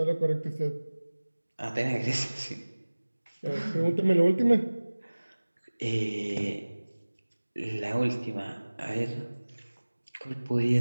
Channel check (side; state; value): both; inverted; correlation -1.00